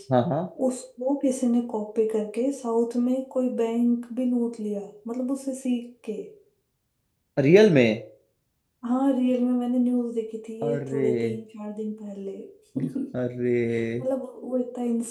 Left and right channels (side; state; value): both; identical; correlation 1.00